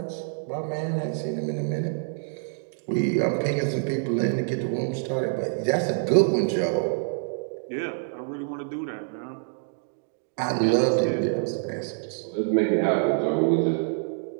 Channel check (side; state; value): left; silent; digital silence